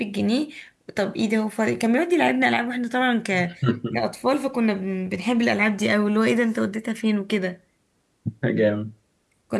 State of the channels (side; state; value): both; identical; correlation 1.00